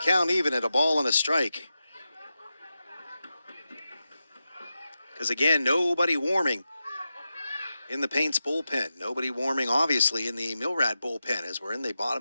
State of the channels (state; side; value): inverted; both; correlation -0.91